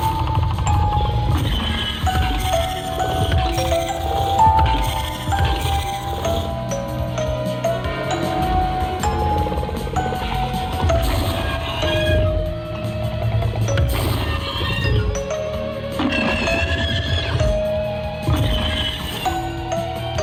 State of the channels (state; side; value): identical; both; correlation 1.00